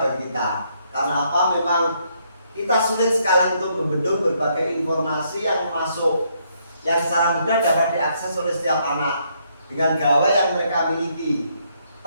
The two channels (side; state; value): both; inverted; correlation -0.72